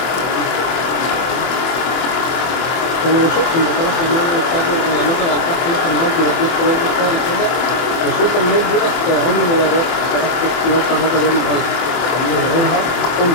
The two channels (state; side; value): late; right; 24 ms